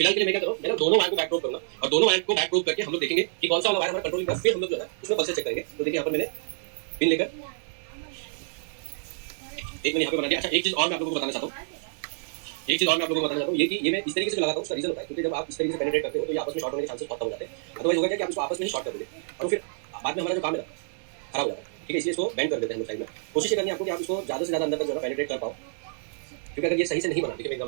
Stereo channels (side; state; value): left; silent; 58 dB below the other